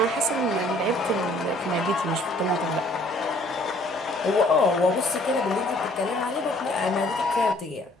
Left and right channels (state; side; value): normal; both; correlation 0.59